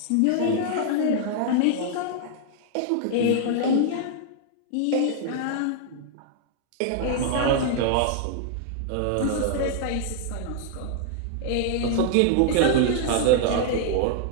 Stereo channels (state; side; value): different; both; correlation -0.01